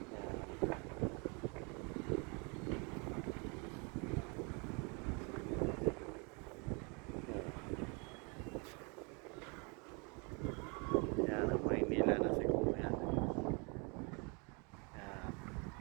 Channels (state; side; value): quieter; left; 32.7 dB